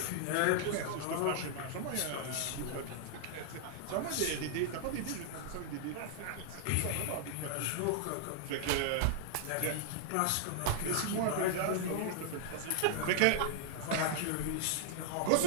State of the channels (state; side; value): different; both; correlation -0.01